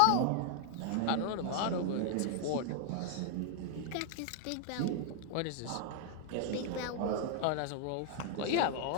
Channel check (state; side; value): different; both; correlation 0.00